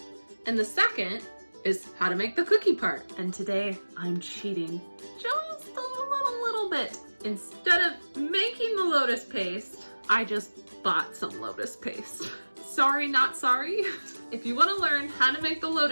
and the second is how to make the cookie part. And today I'm cheating just a little bit. Instead of making the lotus paste, I just bought some lotus paste. Sorry, not sorry. If you want to learn how to make the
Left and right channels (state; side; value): inverted; both; correlation -1.00